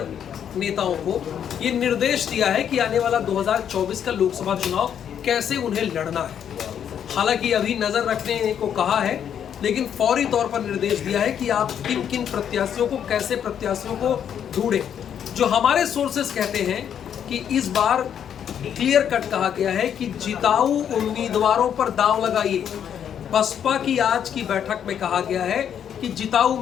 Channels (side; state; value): right; quieter; 8.8 dB